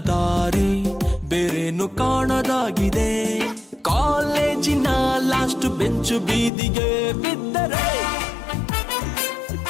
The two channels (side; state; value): right; drops out; at 6.5 s